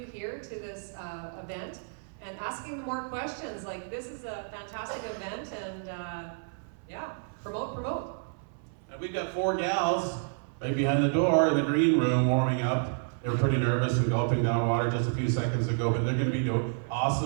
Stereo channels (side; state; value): left; silent; 58 dB below the other